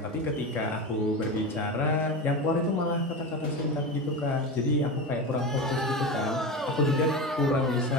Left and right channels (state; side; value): normal; both; correlation 0.23